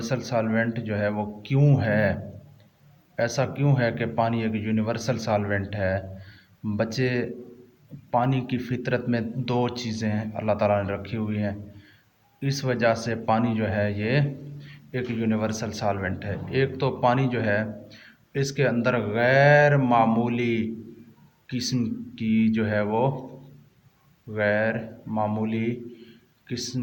सॉल्वेंट जो है वो क्यों है, ऐसा क्यों है कि पानी एक यूनिवर्सल सॉल्वेंट है। बच्चे, पानी की फितरत में दो चीज़ें अल्लाह ताला ने रखी हुई हैं, इस वजह से पानी जो है ये एक यूनिवर्सल सॉल्वेंट है। एक तो पानी जो है इसके अंदर गैर मामूली किस्म की जो है वो गैर मामूली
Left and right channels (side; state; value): both; identical; correlation 1.00